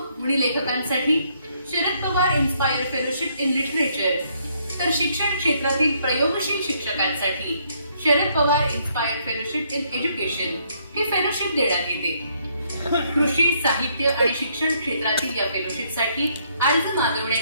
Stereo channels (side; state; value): both; inverted; correlation -0.70